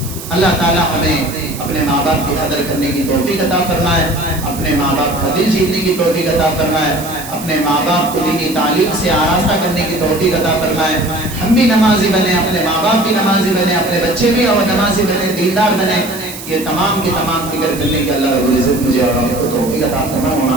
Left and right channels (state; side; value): noise; right; hiss, 12 dB below the sound